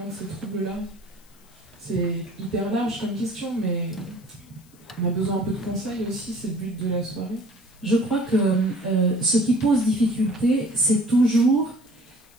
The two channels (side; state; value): left; noise; hiss, 29 dB below the sound